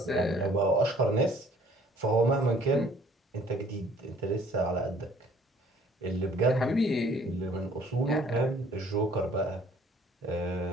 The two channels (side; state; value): both; normal; correlation 0.57